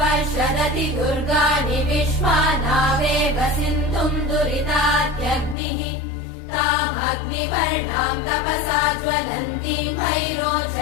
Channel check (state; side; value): drops out; right; at 5.6 s